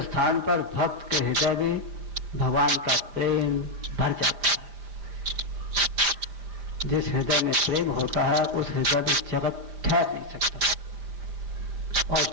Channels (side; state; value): left; late; 5.4 ms